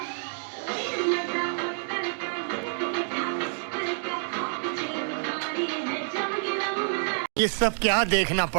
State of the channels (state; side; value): silent; left; digital silence